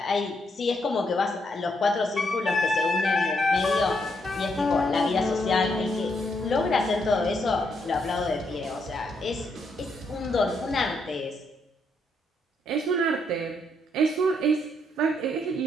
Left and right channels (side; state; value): both; normal; correlation 0.76